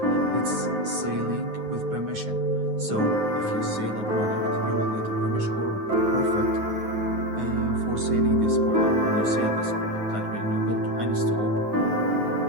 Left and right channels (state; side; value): late; left; 9.4 ms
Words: It's selling with permission. So if you sell a product, you will get a permission or profit for selling this product when you sell this product. Like when you go to any store